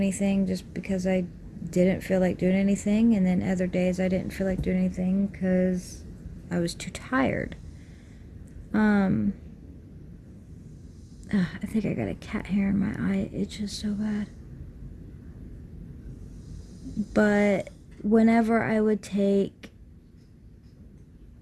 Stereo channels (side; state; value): both; identical; correlation 1.00